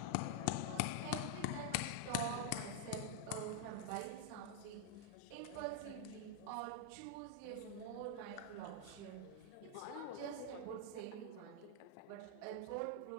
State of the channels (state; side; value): different; both; correlation 0.00